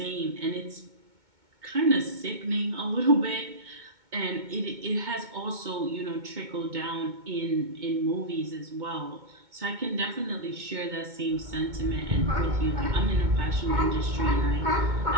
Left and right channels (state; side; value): late; left; 2.2 ms